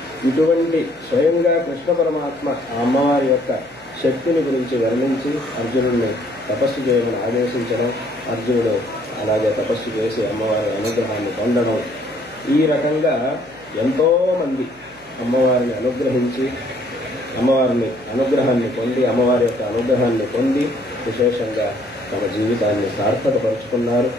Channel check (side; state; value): left; noise; hum, 27 dB below the sound